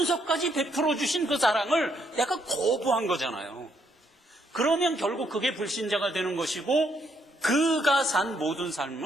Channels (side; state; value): both; normal; correlation 0.73